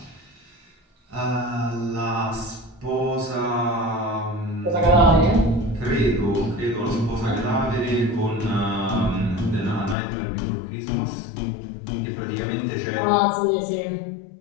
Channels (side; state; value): right; drops out; at 10.0 s